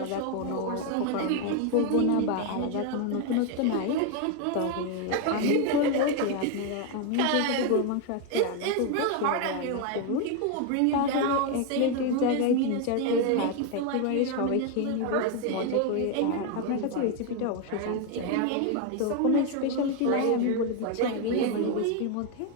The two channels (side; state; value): both; different; correlation 0.01